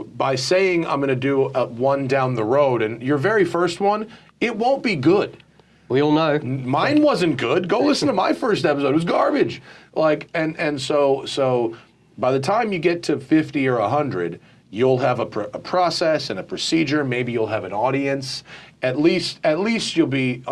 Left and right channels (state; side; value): identical; both; correlation 1.00